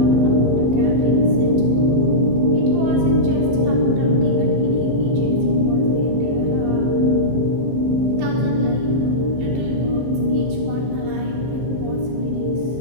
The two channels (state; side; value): late; left; 15 ms